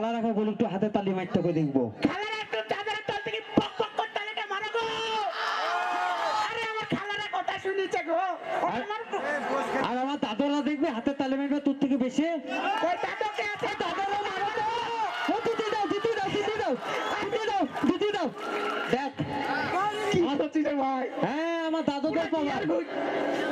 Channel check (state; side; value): identical; both; correlation 1.00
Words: রাখা বল, একটু হাতে তালি মারতে করে দেখবো। খালার একটু চাদরের তল থেকে পক পক করে তালিটা মারো গো। আরে আমার খালারা কথা শুনেছে গো। আর আমার দাদরা দেখবে হাতে তালি মারবে তোর থেকে বেশি। ওই দাদুকে আছে, দাদুরও মারো তো। ও দিদি দাও দিদি দাও দিদি দাও দিদি দাও দিদি দাও। দেখ কি হচ্ছে রে ভাই? হ্যাঁ আমার দাদুদের পাওয়ার।